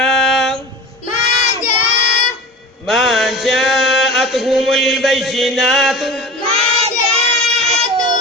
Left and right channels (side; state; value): both; normal; correlation 0.34